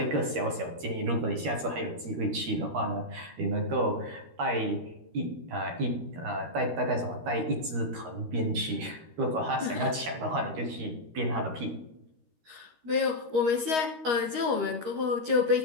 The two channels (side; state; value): left; late; 13 ms